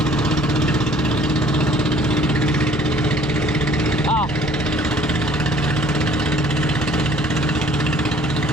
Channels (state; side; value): normal; both; correlation 0.56